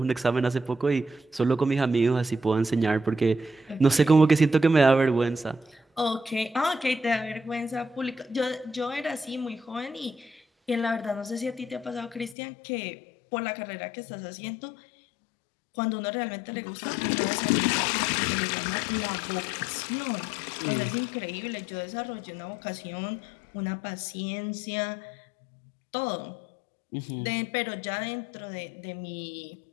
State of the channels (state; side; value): drops out; right; at 12.4 s